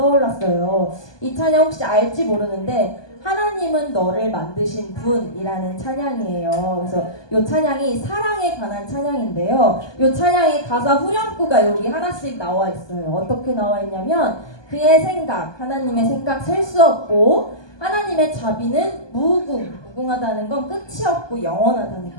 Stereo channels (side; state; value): right; late; 1.2 ms